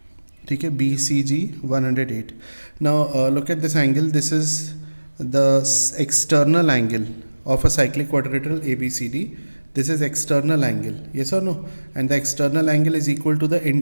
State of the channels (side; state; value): both; inverted; correlation -1.00